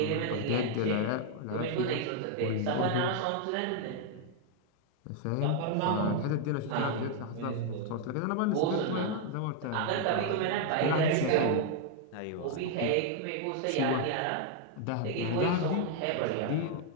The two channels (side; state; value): both; different; correlation 0.00